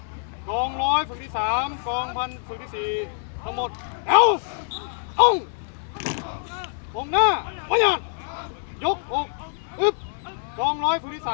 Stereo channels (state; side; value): silent; right; 62 dB below the other